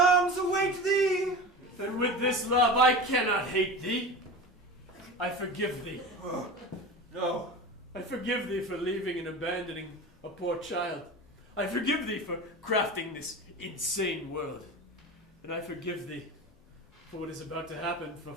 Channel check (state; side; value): normal; both; correlation 0.31